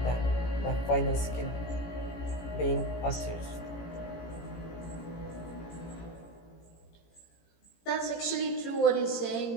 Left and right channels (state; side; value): late; right; 18 ms